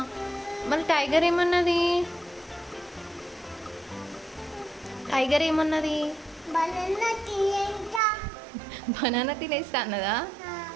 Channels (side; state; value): left; drops out; at 8.0 s